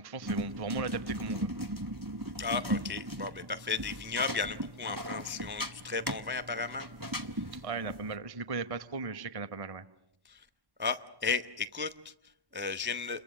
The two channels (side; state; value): left; late; 1.1 ms